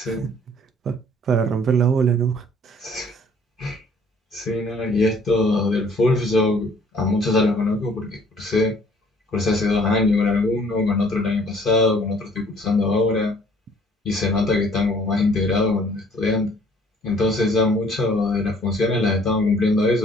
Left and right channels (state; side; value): normal; both; correlation 0.57